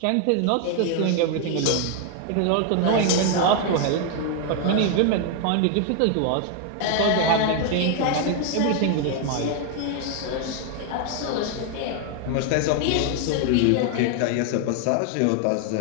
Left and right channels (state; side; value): different; both; correlation 0.00